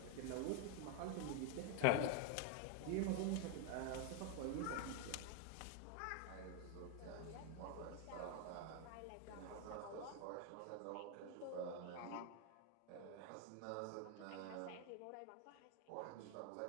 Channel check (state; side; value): different; both; correlation 0.01